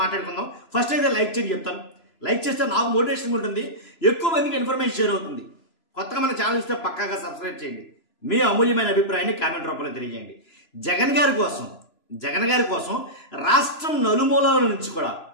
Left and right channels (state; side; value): late; right; 3.0 ms